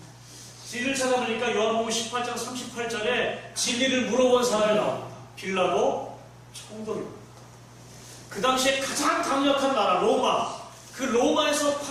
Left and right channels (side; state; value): both; identical; correlation 1.00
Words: 진리를 찾아보니까 요한복음 18장 38절에 진리를 물어본 사람이 나옵니다. 빌라도 총독입니다. 그 당시에 가장 강력한 나라 로마, 그 로마에서